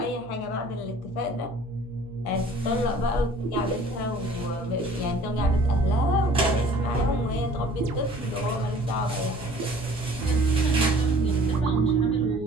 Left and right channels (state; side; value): normal; both; correlation 0.51